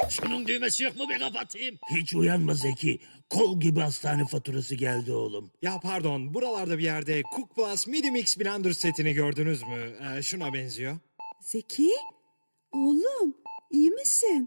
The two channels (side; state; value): both; inverted; correlation -1.00